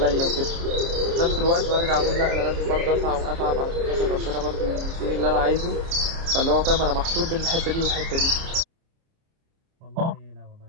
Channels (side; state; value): left; late; 30 ms